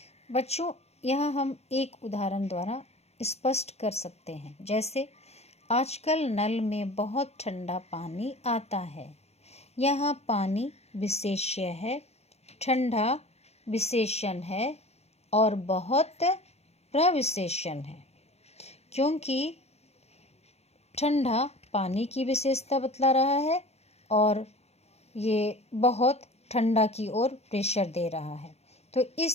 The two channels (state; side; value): late; right; 0.31 ms